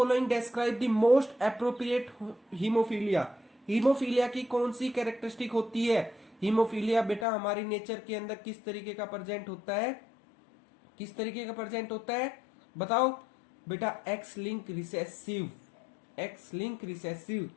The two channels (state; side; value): drops out; right; at 7.2 s